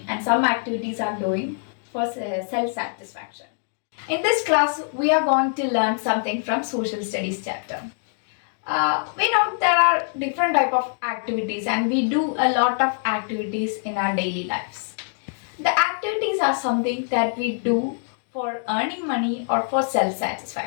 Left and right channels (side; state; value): right; silent; 63 dB below the other